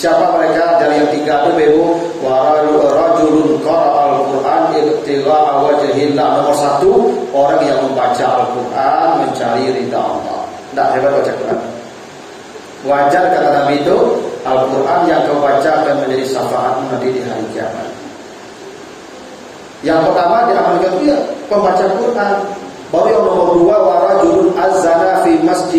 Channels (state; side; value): identical; both; correlation 1.00